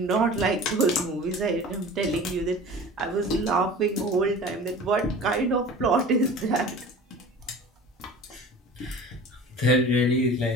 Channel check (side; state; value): both; normal; correlation 0.39